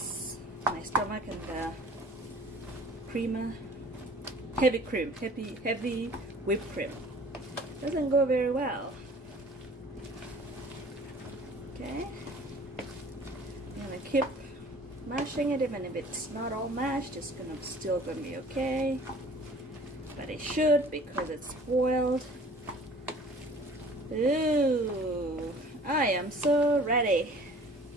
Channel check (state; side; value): normal; both; correlation 0.49